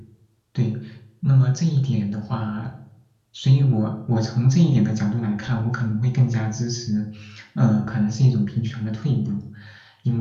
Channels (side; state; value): both; identical; correlation 1.00